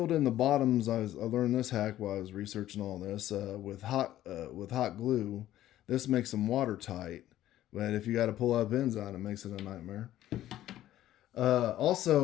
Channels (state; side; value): quieter; right; 13.4 dB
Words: in the bottoms. I learned this hack while I was researching all this with hot glue. This makes them watertight, but if you got to pull out pins out, it makes it a nightmare.